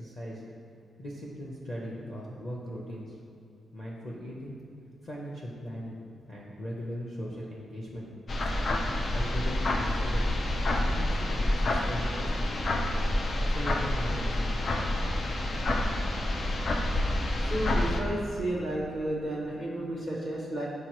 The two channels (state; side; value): normal; both; correlation 0.90